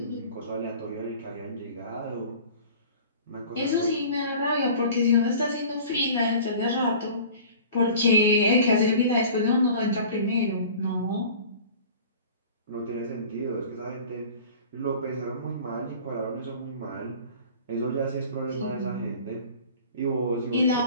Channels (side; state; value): both; inverted; correlation -0.43